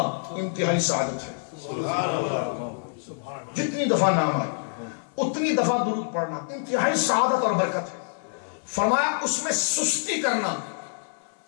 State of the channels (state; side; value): silent; right; digital silence